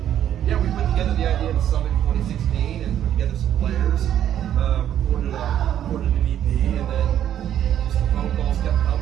yeah, we put together the idea of the Summit in 2016 and put together some players, recorded an EP, and then just the phone calls kept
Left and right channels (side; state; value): left; quieter; 10.6 dB